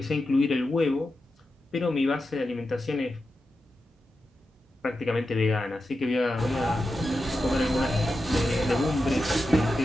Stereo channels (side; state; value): both; normal; correlation 0.90